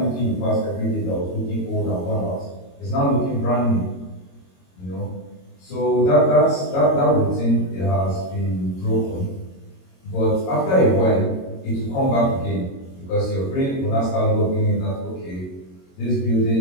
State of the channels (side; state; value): right; late; 22 ms